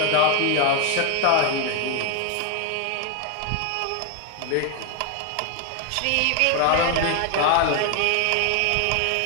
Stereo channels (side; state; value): both; different; correlation 0.01